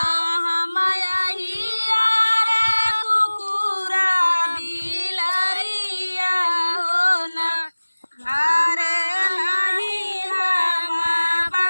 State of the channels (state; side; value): inverted; both; correlation -1.00